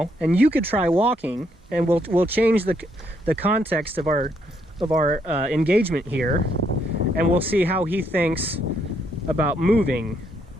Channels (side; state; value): both; normal; correlation 0.73